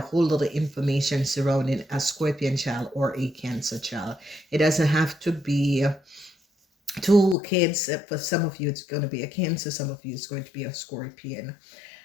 whole lot of information surrounding a Scorpion child or a Cancer child. It doesn't have to be two kids. For some of you, it's going to be a Cancer. Some of you, it's going to be a Scorpion.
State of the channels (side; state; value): right; drops out; at 7.4 s